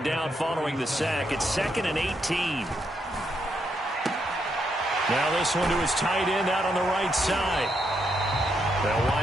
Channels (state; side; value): normal; both; correlation 0.79